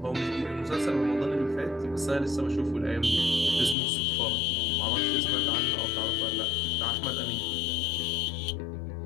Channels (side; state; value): right; drops out; at 3.8 s